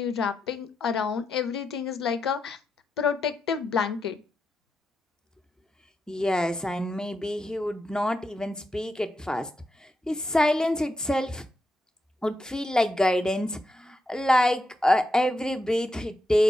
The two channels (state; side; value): normal; both; correlation 0.85